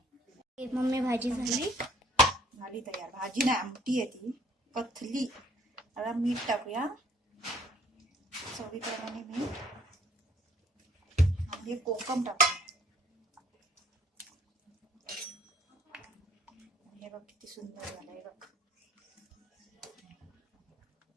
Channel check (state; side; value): normal; both; correlation 0.58